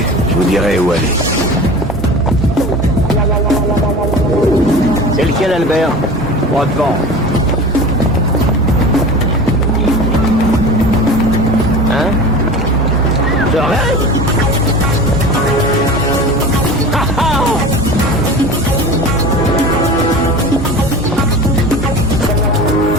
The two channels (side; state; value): both; normal; correlation 0.36